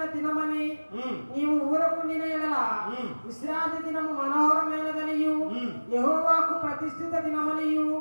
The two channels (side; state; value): both; inverted; correlation -1.00